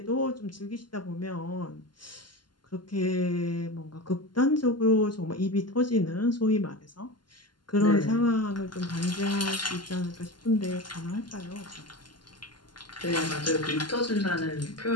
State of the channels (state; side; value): late; right; 0.71 ms